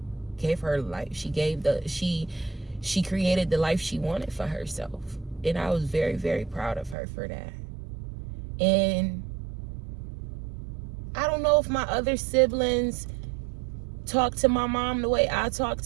gave her life. She created the life she wanted for herself. And I was very, very proud of her for that. And I don't know if my other siblings talk to my mom the way I talk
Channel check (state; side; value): drops out; left; at 7.0 s